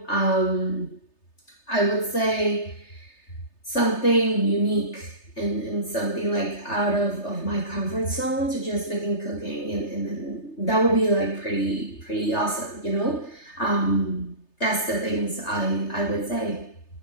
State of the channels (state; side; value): late; right; 3.3 ms